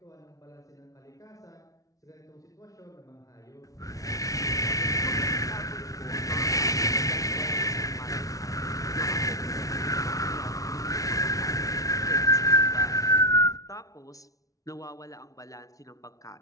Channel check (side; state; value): right; late; 0.17 ms